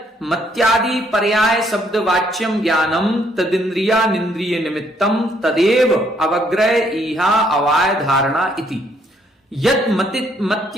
मत्यादि पर्याय शब्द वाच्यम ज्ञानम तदिंद्रिया निंद्रिय निमित्तम तदेव अवग्रह इहा अवाय धारणा इति। यद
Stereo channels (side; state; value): both; normal; correlation 0.69